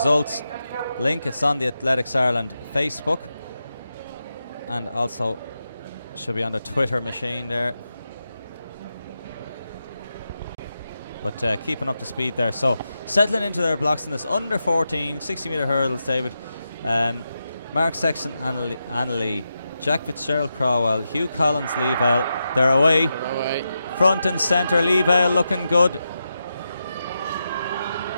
link. It's on the Athletics Ireland Facebook, and also should be on the Twitter machine there. But keeping up to speed there. So settling into their blocks in this under 14 60-metre hurdles, David. Mark Sexton, Annalee, Jack Fitzgerald, Crowell, Hugh Collins, Leavell. They're away. Front and centre, Leavell looking good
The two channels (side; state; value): both; inverted; correlation -0.88